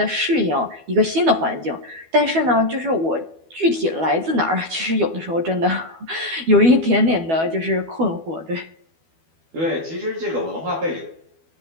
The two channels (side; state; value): left; late; 12 ms